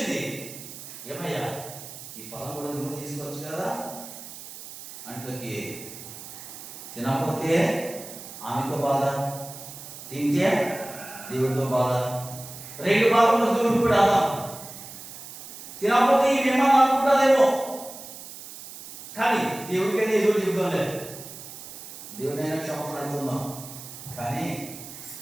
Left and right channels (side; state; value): right; noise; hiss, 13 dB below the sound